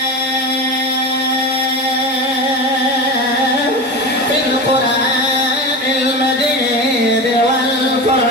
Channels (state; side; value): normal; both; correlation 0.25